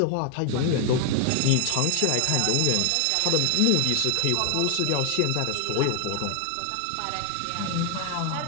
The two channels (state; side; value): different; both; correlation 0.00